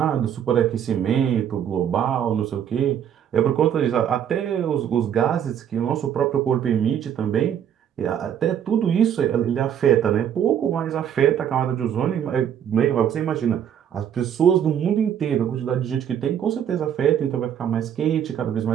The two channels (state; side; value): quieter; left; 9.2 dB